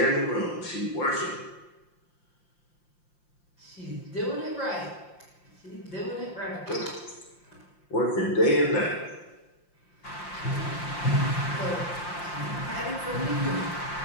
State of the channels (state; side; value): late; right; 5.7 ms